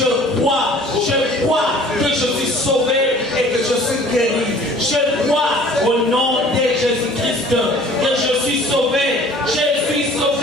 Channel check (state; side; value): normal; both; correlation 0.50